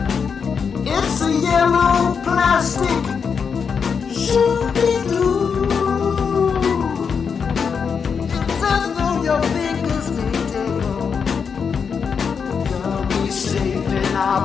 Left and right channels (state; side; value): quieter; right; 6.2 dB